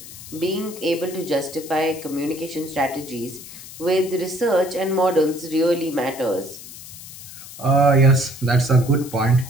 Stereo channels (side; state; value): left; noise; hiss, 15 dB below the sound